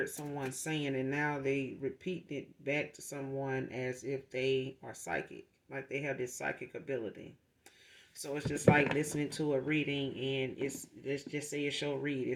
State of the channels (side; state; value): both; identical; correlation 1.00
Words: someone saying, and now they repeat it back to someone as if they are psychic, like they have this psychic ability. So it's just like listening to a reading, and let's just say it's your